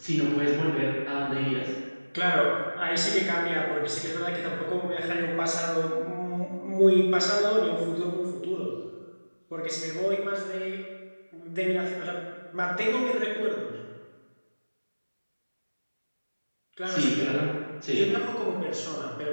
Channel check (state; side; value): inverted; both; correlation -1.00